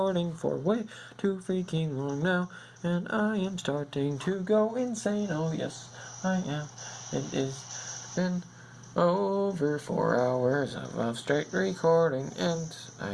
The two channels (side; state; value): both; identical; correlation 1.00